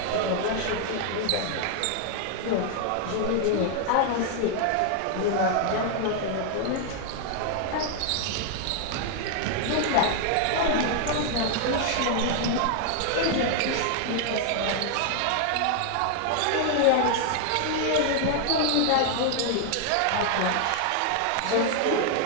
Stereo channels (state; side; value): different; both; correlation 0.00